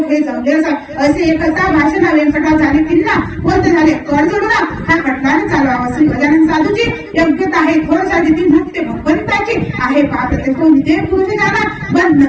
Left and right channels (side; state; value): both; identical; correlation 1.00